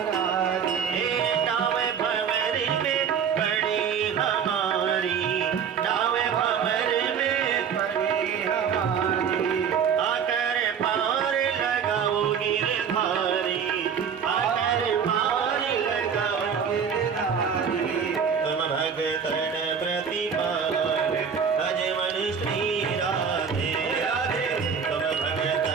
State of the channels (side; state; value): left; quieter; 7.0 dB